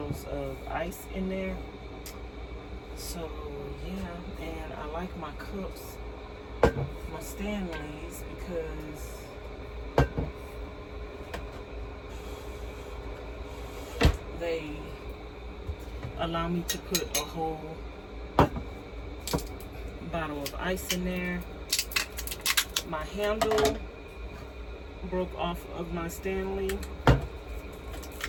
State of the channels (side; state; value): both; identical; correlation 1.00